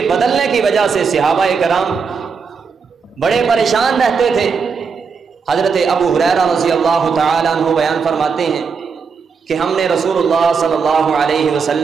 بدلنے کی وجہ سے صحابہ کرام بڑے پریشان رہتے تھے۔ حضرت ابو ہریرہ رضی اللہ تعالیٰ عنہ بیان فرماتے ہیں کہ ہم نے رسول اللہ صلی اللہ علیہ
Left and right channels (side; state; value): left; quieter; 5.5 dB